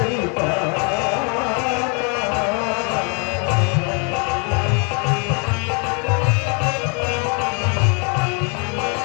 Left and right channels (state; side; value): quieter; right; 35.7 dB